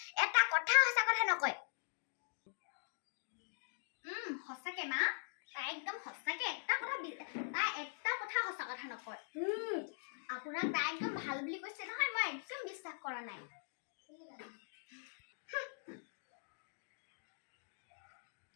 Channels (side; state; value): right; silent; digital silence